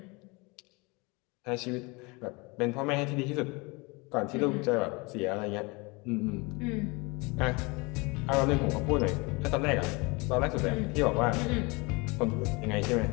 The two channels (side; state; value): right; quieter; 27.1 dB